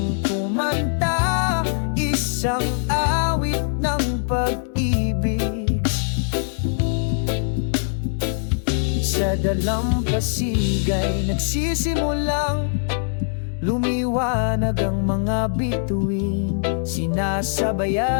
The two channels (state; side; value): silent; right; digital silence